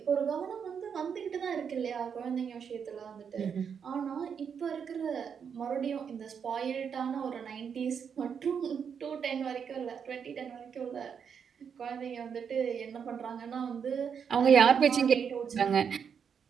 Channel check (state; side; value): quieter; left; 7.1 dB